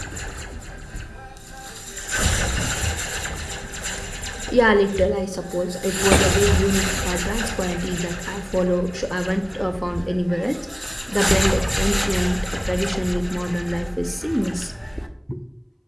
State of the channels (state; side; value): identical; both; correlation 1.00